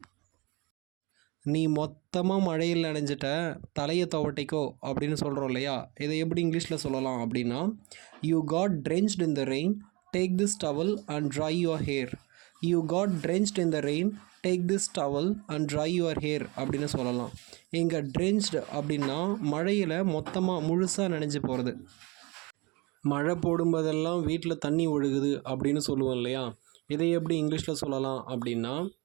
நீ மொத்தமாக மழையில் நனைஞ்சிட்ட, தலையை துவட்டிக்கோ அப்படின்னு சொல்கிறோம் இல்லையா? இதை எப்படி இங்கிலீஷில் சொல்லலாம் அப்படின்னா, you got drenched in the rain, take this towel and dry your hair. You got drenched in the rain, take this towel and dry your hair அப்படின்னு சொல்லலாம். இங்கே ட்ரென்ச்டு அப்படின்னா மழையில் மொத்தமாக முழுசாக நனைஞ்சு போகிறது. மழை போடும்போதெல்லாம் வீட்டில் தண்ணி ஒழுகுது அப்படின்னு சொல்லுவோம் இல்லையா? இதை எப்படி இங்கிலீஷில் சொல்லலாம் அப்படின்னா,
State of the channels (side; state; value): left; quieter; 26.2 dB